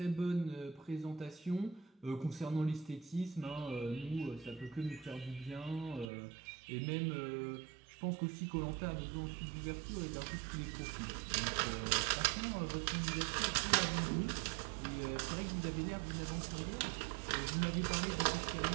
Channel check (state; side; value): drops out; left; at 6.1 s